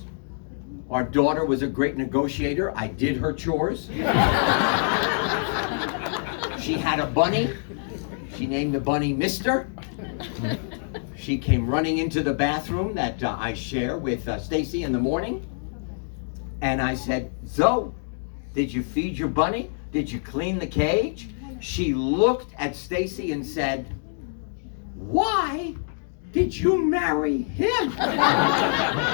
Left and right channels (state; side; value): silent; right; digital silence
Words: Our daughter was a great negotiator. I did her chores. She had a bunny. She named the bunny Mister. She came running into the bathroom that I share with Stacy in the morning. And I said, Zoe, did you feed your bunny? Did you clean the cage? She looked at Stacy and said, why did you marry him?